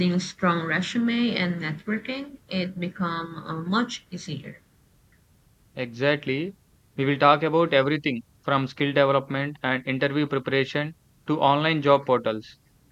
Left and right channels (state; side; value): identical; both; correlation 1.00